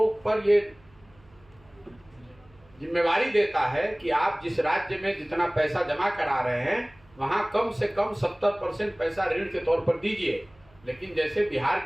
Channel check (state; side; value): noise; right; hum, 29 dB below the sound